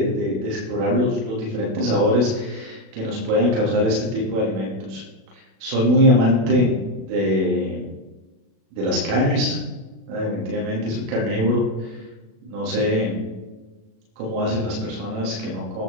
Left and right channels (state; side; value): late; left; 36 ms